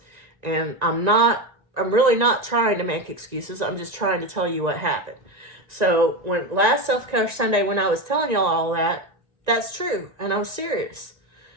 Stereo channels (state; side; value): late; left; 1.9 ms